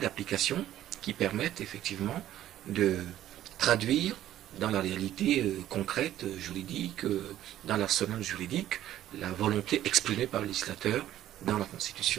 qui permette effectivement de traduire dans la réalité concrète, juridique, dans l'arsenal juridique, la volonté exprimée par le législateur dans la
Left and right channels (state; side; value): quieter; left; 12.7 dB